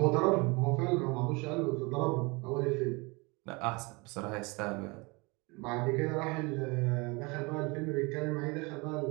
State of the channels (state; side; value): quieter; left; 27.4 dB